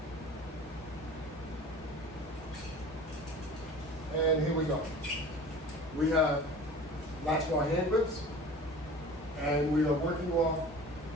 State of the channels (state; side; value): normal; both; correlation 0.40